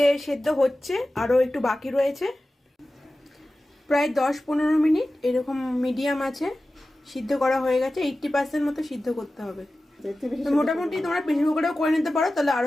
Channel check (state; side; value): normal; both; correlation 0.95